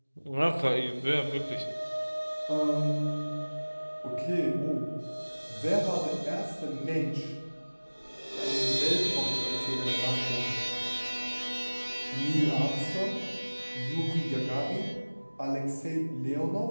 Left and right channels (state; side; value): inverted; both; correlation -1.00